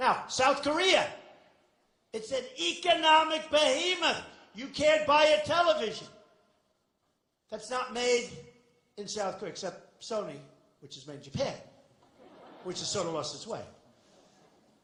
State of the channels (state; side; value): identical; both; correlation 1.00